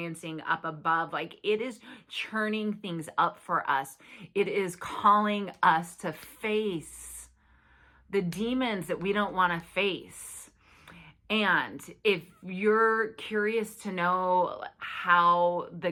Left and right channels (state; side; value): identical; both; correlation 1.00